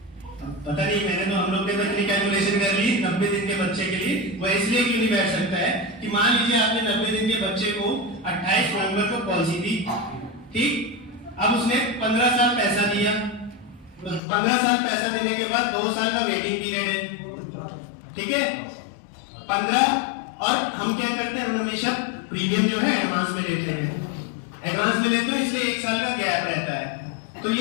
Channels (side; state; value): right; drops out; at 14.2 s